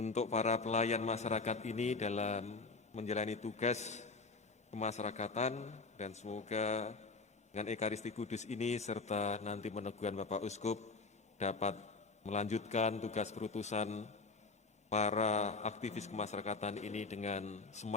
para pelayan masyarakat ini dalam menjalani tugas kemasyarakatan, dan semoga dengan Ekaristi Kudus ini serta nanti meneguhan Bapak Uskup dapat melanjutkan tugas perutusan para aktivis kemasyarakatan ini dengan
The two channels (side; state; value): right; quieter; 4.0 dB